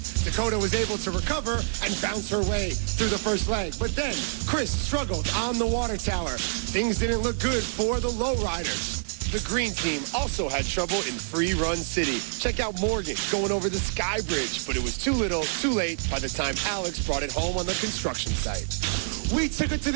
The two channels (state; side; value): silent; left; digital silence